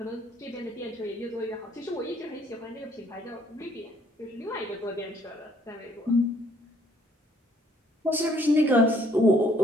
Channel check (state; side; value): normal; both; correlation 0.64